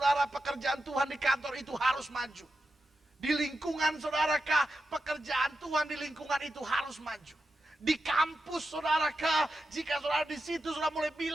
pekerjaan Tuhan di kantor itu harus maju. Di lingkungan saudarakah, pekerjaan Tuhan di lingkungan itu harus maju. Di kampus saudarakah, jika saudara di situ sudah mulai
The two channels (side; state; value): both; normal; correlation 0.89